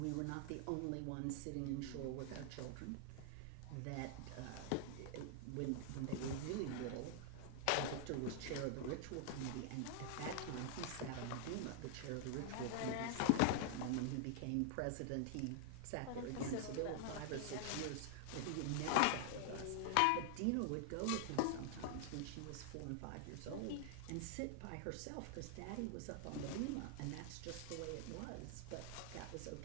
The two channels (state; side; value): different; both; correlation 0.00